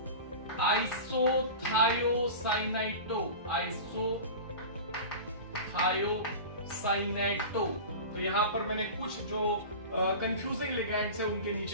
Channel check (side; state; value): both; inverted; correlation -0.32